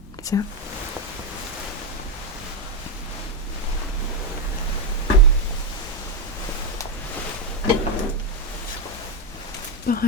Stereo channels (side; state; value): both; normal; correlation 0.05